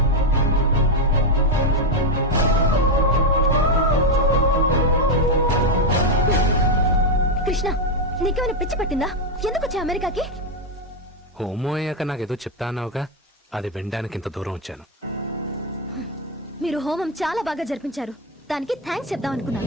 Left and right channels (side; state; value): both; normal; correlation 0.05